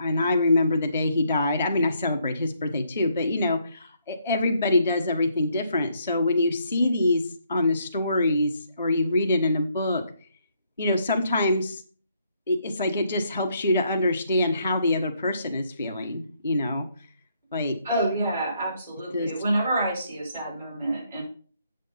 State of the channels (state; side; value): inverted; both; correlation -0.72